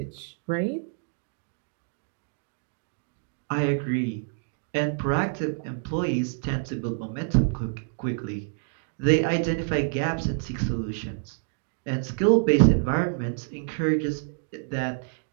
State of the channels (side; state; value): left; silent; digital silence